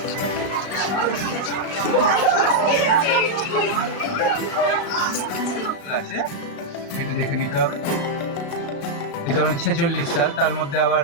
দেখে নিতে হবে। এটা 46 সাল, তার মধ্যে আবার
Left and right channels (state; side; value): late; right; 35 ms